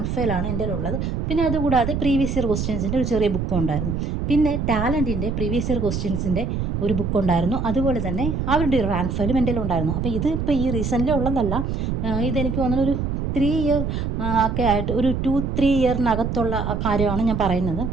ഫയലാണ് എൻ്റെ കയ്യിലുള്ളത്. പിന്നെ അതുകൂടാതെ പ്രീവിയസ് ഇയർ ക്വസ്റ്റ്യൻസിൻ്റെ ഒരു ചെറിയ ബുക്കും ഉണ്ടായിരുന്നു. പിന്നെ ടാലൻറ്റിൻ്റെ പ്രീവിയസ് ഇയർ ക്വസ്റ്റ്യൻസിൻ്റെ ഒരു ബുക്കുണ്ടായിരുന്നു. അതുപോലെ തന്നെ അവരുടെ ഒരു റാങ്ക് ഫയലും എൻ്റെ കയ്യിലുണ്ടായിരുന്നു. അപ്പോൾ ഇത് ഇപ്പോൾ ഈ റീസെൻ്റ്ലി ഉള്ളതല്ല, ഇതെനിക്ക് തോന്നുന്നു ഒരു 3 ഇയർ ഒക്കെ ആയിട്ട്, ഒരു 2-3 ഇയറിനകത്തുള്ള കാര്യമാണ് ഞാൻ പറയുന്നത്.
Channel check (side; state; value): right; noise; rumble, 2 dB below the sound